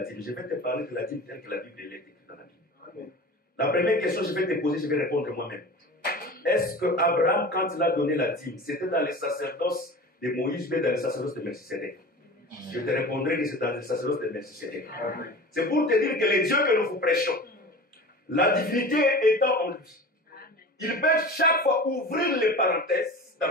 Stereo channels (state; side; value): normal; both; correlation 0.35